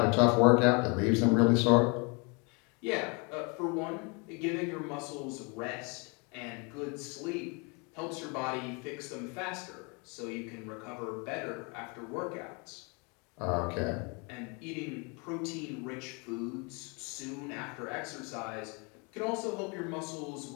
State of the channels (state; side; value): quieter; right; 32.0 dB